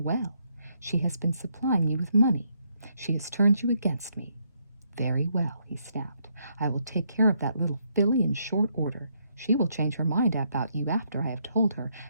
She has been supplying you with money. She has turned you against me." "Very well," he snapped. "I will take care of that little filly in short order. She will change her mind about you after I have told her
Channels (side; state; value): both; inverted; correlation -0.75